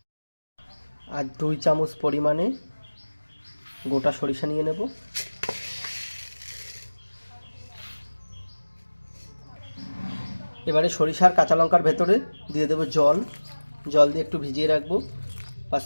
আর 2 চামচ পরিমাণে গোটা সরিষা নিয়ে নেব। এবারে সরিষার কাঁচা লঙ্কার ভেতরে দিয়ে দেবো জল দিয়ে একটু ভিজিয়ে রাখবো 5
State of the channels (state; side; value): inverted; both; correlation -1.00